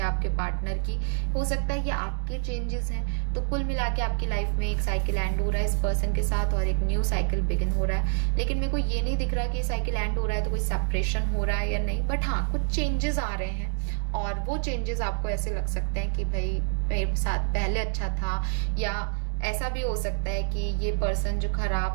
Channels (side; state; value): left; silent; digital silence